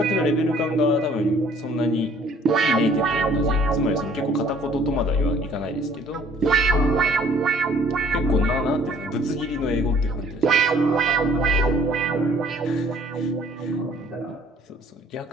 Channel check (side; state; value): both; normal; correlation 0.57